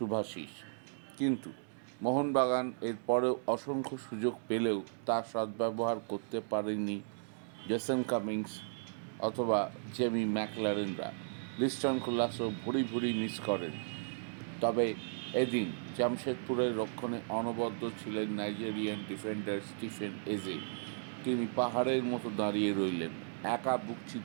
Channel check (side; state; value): left; silent; digital silence